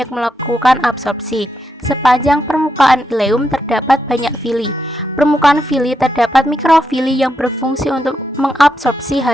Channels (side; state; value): both; normal; correlation 0.82